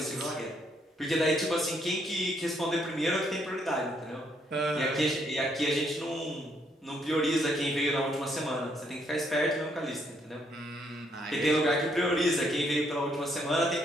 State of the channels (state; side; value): normal; both; correlation 0.72